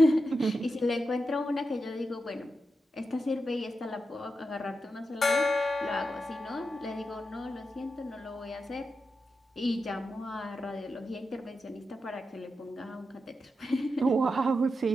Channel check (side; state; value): both; normal; correlation 0.88